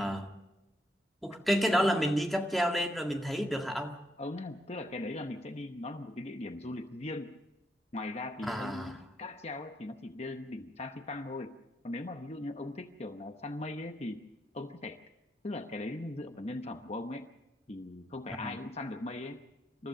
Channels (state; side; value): normal; both; correlation 0.78